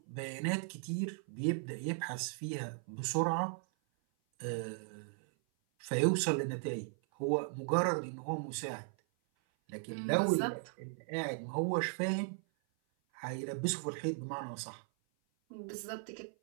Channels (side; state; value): left; silent; 53 dB below the other